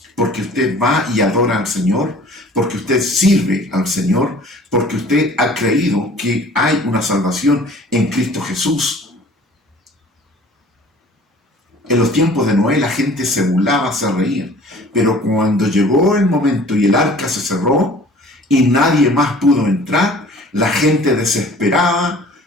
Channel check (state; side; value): normal; both; correlation 0.49